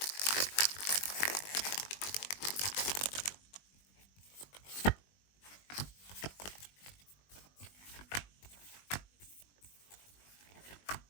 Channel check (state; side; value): late; right; 20 ms